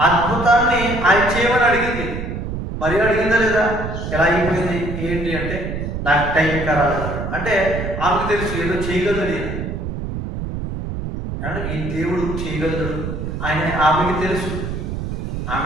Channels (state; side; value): noise; right; rumble, 5 dB below the sound